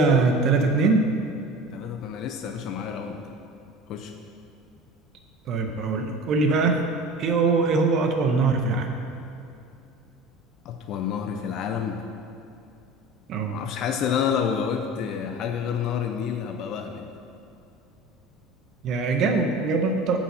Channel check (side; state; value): both; normal; correlation 0.37